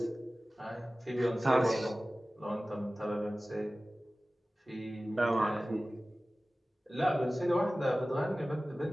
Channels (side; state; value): both; normal; correlation 0.97